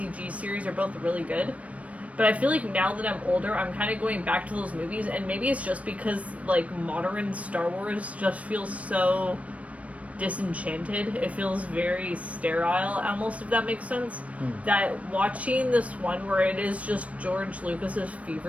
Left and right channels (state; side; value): late; left; 0.066 ms